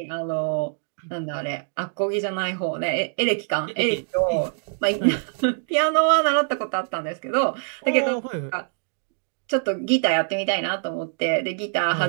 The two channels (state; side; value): silent; left; digital silence